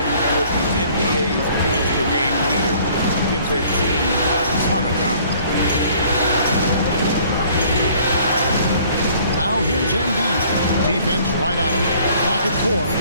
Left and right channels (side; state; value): both; inverted; correlation -0.56